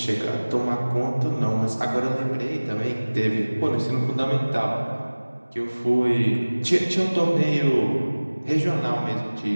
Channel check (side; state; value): both; inverted; correlation -1.00